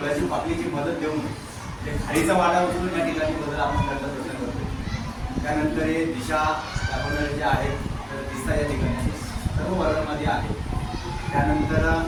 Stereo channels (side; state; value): both; identical; correlation 1.00